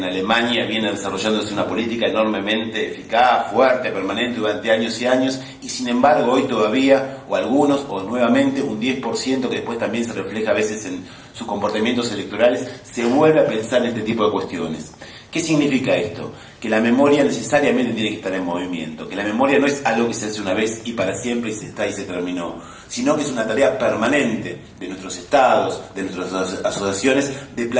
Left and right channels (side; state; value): both; identical; correlation 1.00